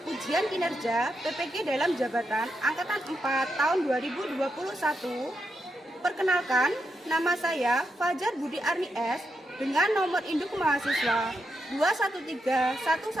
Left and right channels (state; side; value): normal; both; correlation 0.84